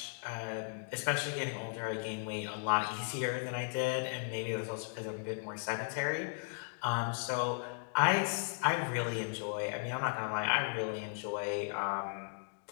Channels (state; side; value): silent; right; digital silence